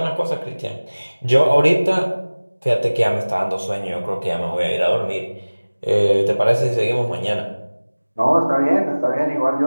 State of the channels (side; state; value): both; inverted; correlation -1.00